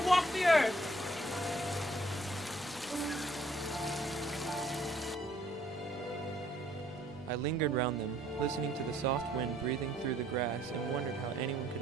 walk the earth. I lingered round them, listening to the soft wind breathing through the grass, and wondered how anyone could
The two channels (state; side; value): normal; both; correlation 0.63